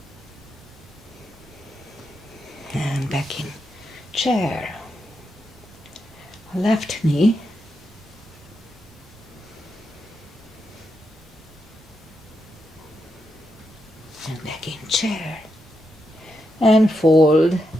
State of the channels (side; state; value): both; normal; correlation 0.84